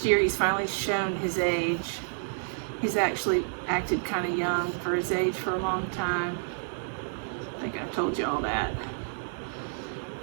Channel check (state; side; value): silent; left; 58 dB below the other